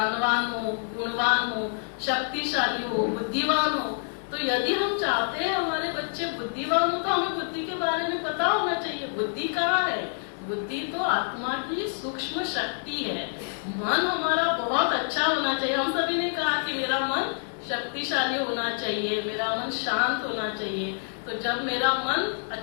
हो, गुणवान हो, शक्तिशाली हो, बुद्धिमान हो। तो यदि हम चाहते हैं हमारे बच्चे बुद्धिमान हो, तो हमें बुद्धि के बारे में पता होना चाहिए। बुद्धि कहाँ है, बुद्धि तो आत्मा की सूक्ष्म शक्ति है। मन हमारा बहुत अच्छा होना चाहिए। हम सभी ने कहा कि मेरा मन शक्तिशाली होना चाहिए, मेरा मन शांत होना चाहिए। तो जब मेरा मन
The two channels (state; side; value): silent; right; 60 dB below the other